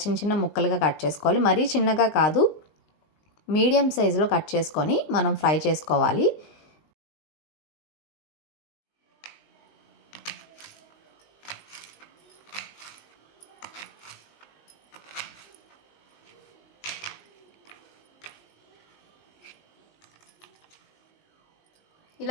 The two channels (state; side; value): late; right; 19 ms